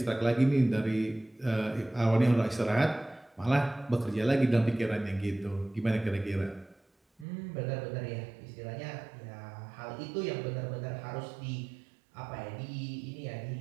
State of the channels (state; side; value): drops out; left; at 7.2 s